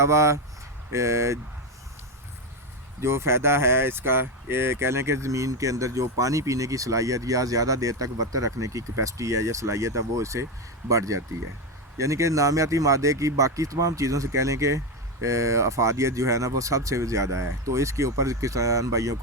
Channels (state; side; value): normal; both; correlation 0.11